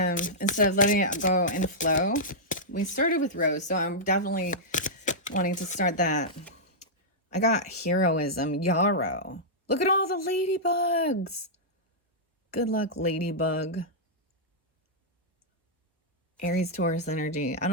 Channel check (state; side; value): normal; both; correlation -0.11